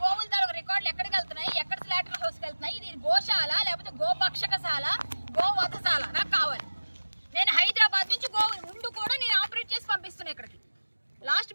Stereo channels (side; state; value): both; inverted; correlation -1.00